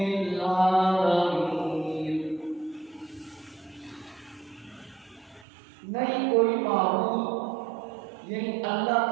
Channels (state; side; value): drops out; left; at 5.5 s